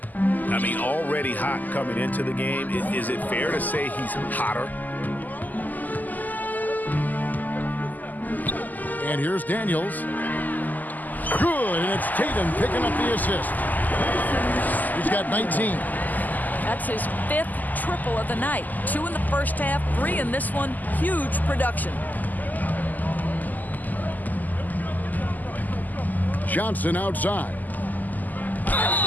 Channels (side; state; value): right; late; 0.083 ms